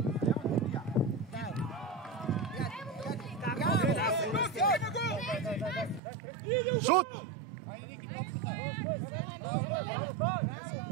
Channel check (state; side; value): drops out; left; at 6.0 s